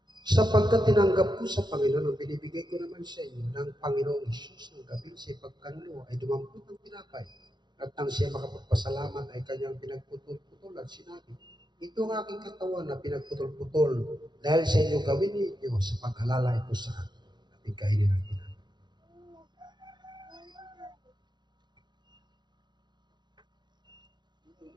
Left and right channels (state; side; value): late; left; 0.21 ms